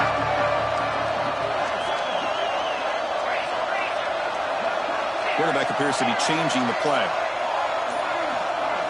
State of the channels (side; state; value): both; identical; correlation 1.00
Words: Quarterback appears to be changing the play.